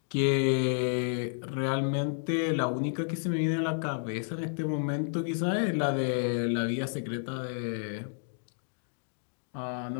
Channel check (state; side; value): silent; right; digital silence